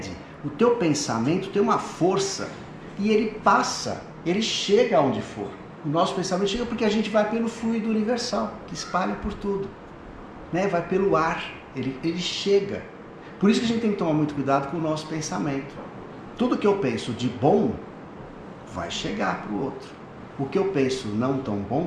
o teu pensamento tem uma força e ele passa, ele chega aonde for. O nosso pensamento chega porque a gente vai pelo fluido universal, que espalha por tudo, vai pelo ar, ele chega. Por isso que a gente tem que tomar muito cuidado com o nosso pensamento. Tudo que eu penso de bom vai chegar para o outro. O que eu penso não tão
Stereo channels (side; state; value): both; identical; correlation 1.00